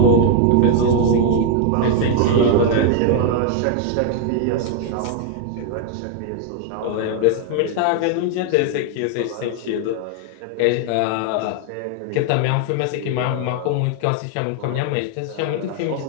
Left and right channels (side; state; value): both; different; correlation 0.00